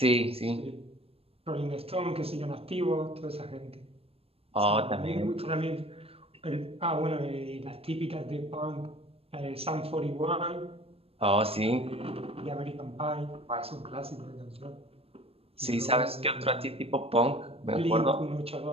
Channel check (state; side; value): late; left; 0.28 ms